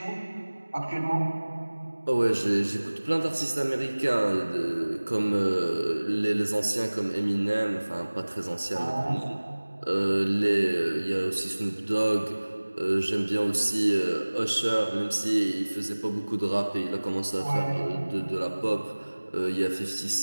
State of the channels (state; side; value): inverted; both; correlation -1.00